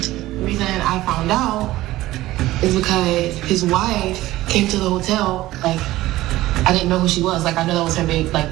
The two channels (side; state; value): left; quieter; 16.6 dB